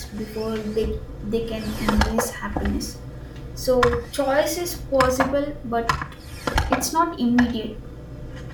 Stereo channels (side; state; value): both; identical; correlation 1.00